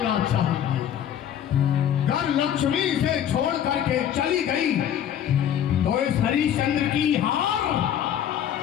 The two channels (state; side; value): quieter; right; 9.9 dB